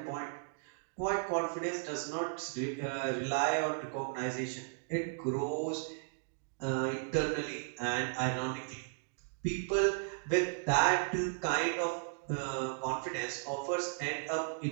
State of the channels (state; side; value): silent; left; digital silence